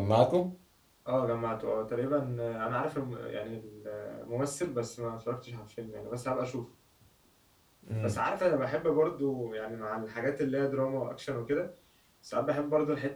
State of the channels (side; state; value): both; identical; correlation 1.00